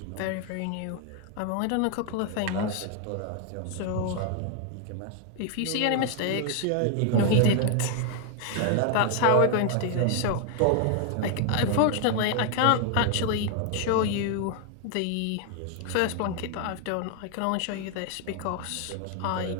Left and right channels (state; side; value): different; both; correlation 0.00